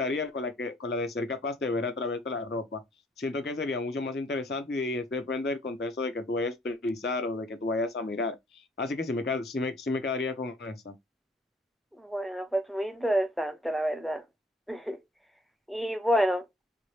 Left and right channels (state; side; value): normal; both; correlation 0.61